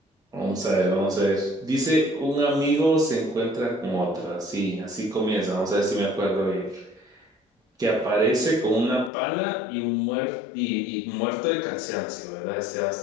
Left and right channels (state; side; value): drops out; right; at 9.1 s